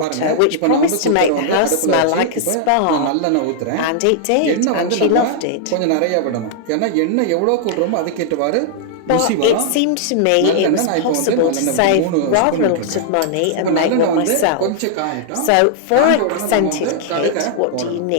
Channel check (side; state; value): both; different; correlation -0.01